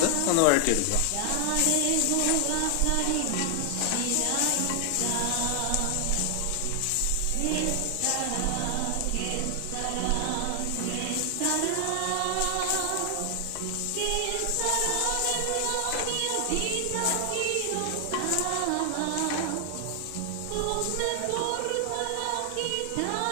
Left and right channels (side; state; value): both; different; correlation 0.00